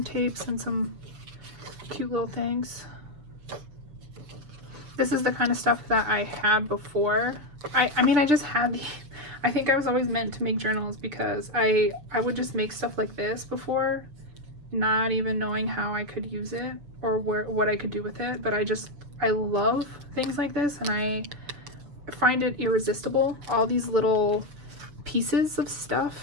tapes, and some cute little things. This is the kind of stuff that I had before. I mean, I just had I think I was always meant to make journals because I would just make stuff like this before, not even knowing how I could use it or what I could do with it. But I love things like this, and I find it irresistible, all these little pieces of stuff.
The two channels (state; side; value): late; left; 6.9 ms